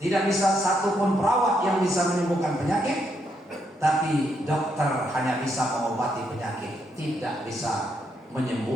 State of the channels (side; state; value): both; normal; correlation 0.77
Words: tidak bisa satupun perawat yang bisa menyembuhkan penyakit. Tapi dokter hanya bisa mengobati penyakit, tidak bisa